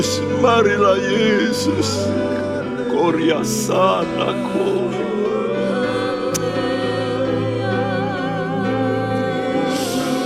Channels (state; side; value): identical; both; correlation 1.00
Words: marilah Yesus. Korea sanaku.